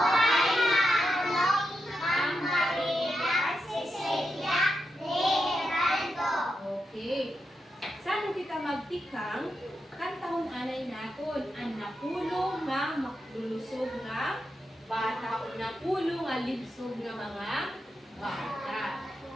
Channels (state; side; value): normal; both; correlation 0.86